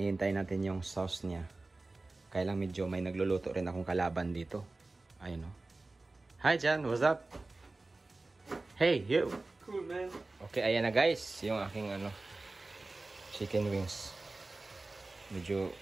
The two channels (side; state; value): left; quieter; 3.2 dB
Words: natin yung sauce niya. Kaya lang medyo may nagluluto rin akong kalaban dito. Ayun o. Hi Jan, what's up? Hey, you. Cool, man. Okay, ayan na guys, yung aking chicken wings. Medyo